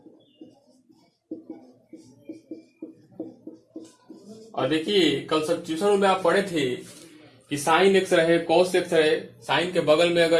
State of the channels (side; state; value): both; identical; correlation 1.00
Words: और देखिए कल सब्स्टिट्यूशन में आप पढ़े थे कि साइन एक्स रहे, कॉस एक्स रहे, साइन के बगल में